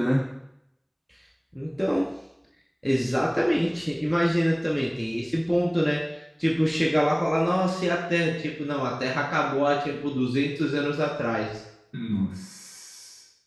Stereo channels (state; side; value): identical; both; correlation 1.00